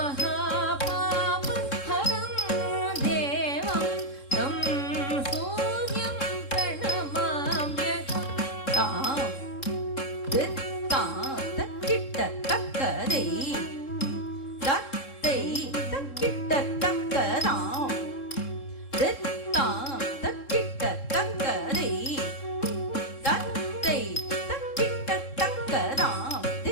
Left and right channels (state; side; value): late; right; 3.7 ms